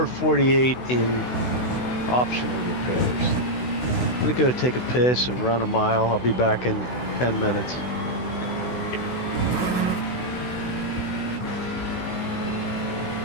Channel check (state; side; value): late; right; 16 ms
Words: in optional repairs. I'm gonna go take a piss and run a mile. I'll be back in 10 minutes.